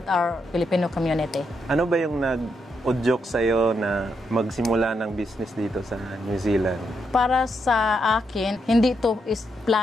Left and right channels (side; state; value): both; normal; correlation 0.80